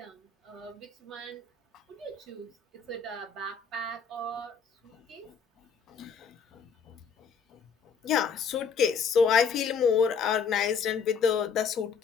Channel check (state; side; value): quieter; right; 6.1 dB